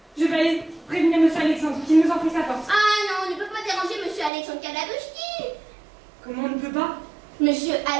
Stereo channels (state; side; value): drops out; left; at 4.3 s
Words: Je vais aller prévenir monsieur Alexandre, qui nous enfonce la porte. Ah non, on ne peut pas déranger Monsieur Alexandre Kalabushkin. Comment on ne peut pas? Monsieur